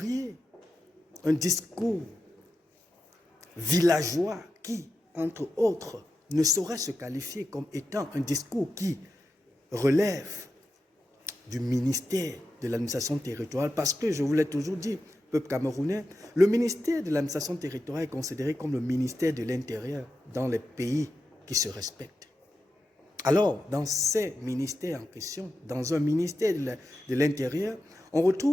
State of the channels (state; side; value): normal; both; correlation 0.89